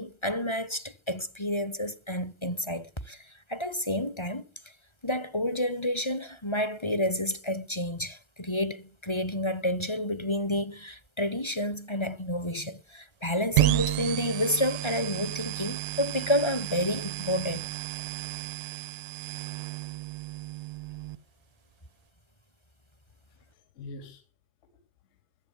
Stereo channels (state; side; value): late; right; 1.3 ms